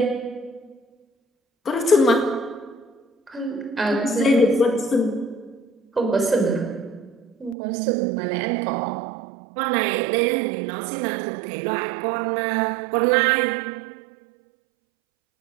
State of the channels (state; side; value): drops out; left; at 7.6 s